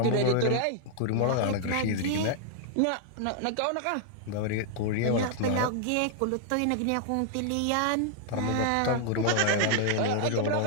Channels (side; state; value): both; different; correlation -0.01